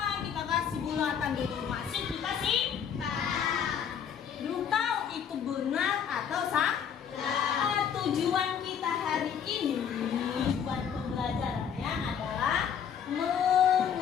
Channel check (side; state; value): right; quieter; 8.0 dB